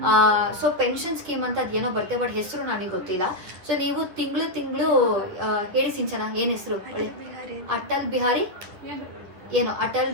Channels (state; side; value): late; left; 10 ms